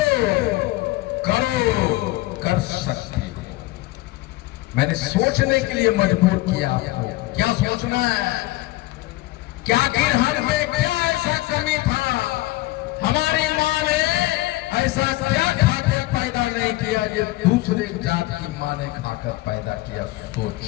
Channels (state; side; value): quieter; right; 19.0 dB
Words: करो कर सकते हो। मैंने सोचने के लिए मजबूर किया आपको। क्या सोचना है? क्या आखिर हम में क्या ऐसा कमी था? हमारी माँ ने ऐसा क्या खाकर पैदा नहीं किया जो दूसरे जात की माँ ने खाकर पैदा किया?